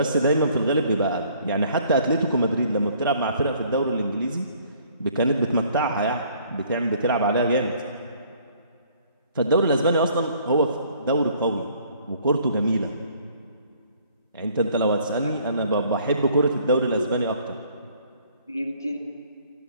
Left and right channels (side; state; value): both; inverted; correlation -0.59